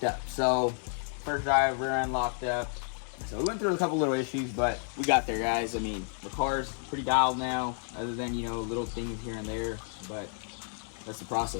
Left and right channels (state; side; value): silent; right; 57 dB below the other